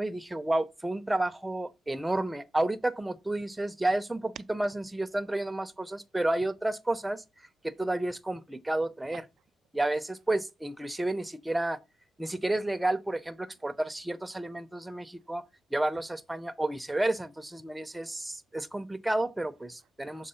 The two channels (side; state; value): both; normal; correlation 0.98